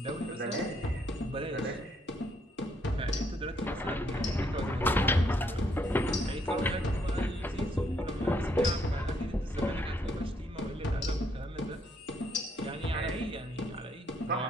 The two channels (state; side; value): normal; both; correlation 0.71